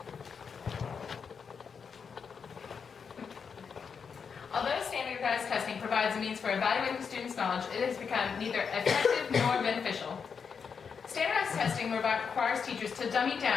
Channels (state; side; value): quieter; right; 6.2 dB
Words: Although standardized testing provides a means for evaluating students' knowledge, it has become neither effective nor beneficial. Standardized testing requires teachers to dummy